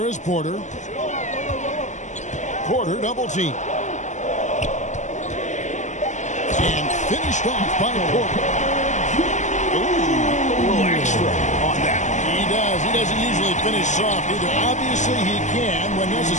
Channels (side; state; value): right; late; 0.35 ms